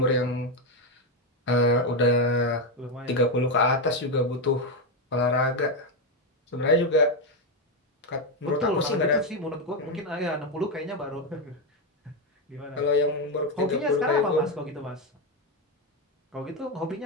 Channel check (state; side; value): normal; both; correlation 0.07